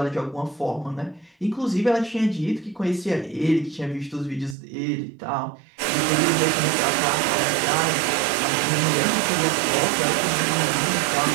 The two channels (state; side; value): drops out; left; at 4.5 s